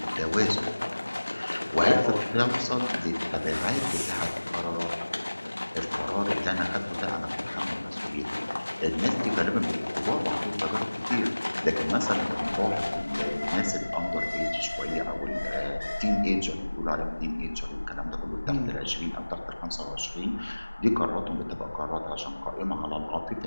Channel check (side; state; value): both; inverted; correlation -1.00